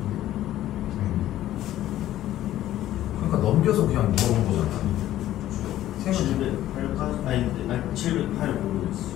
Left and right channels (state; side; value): quieter; right; 13.4 dB